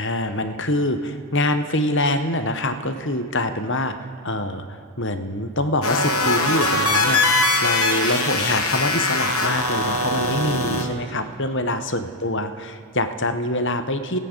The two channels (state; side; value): normal; both; correlation 0.04